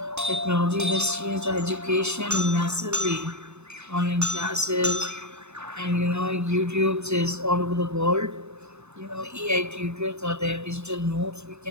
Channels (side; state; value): left; late; 0.81 ms